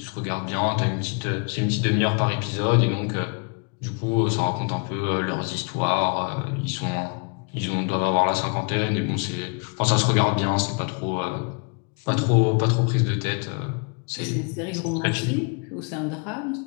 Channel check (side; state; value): right; quieter; 36.1 dB